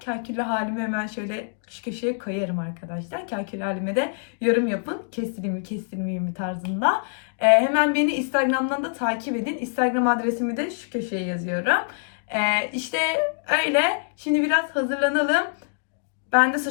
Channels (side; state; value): right; silent; digital silence